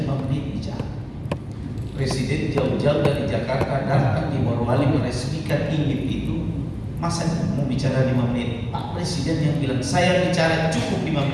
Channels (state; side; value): identical; both; correlation 1.00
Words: 5 menit bicara. Presiden jauh-jauh dari Jakarta datang di Morowali meresmikan ingin itu, masa mau bicara 5 menit? Pak Presiden yang bilang saya bicara cukup 5